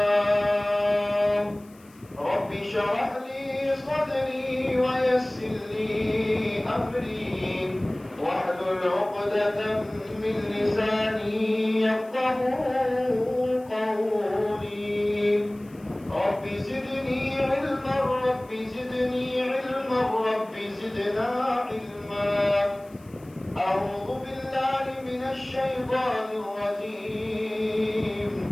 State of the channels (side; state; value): left; noise; hiss, 28 dB below the sound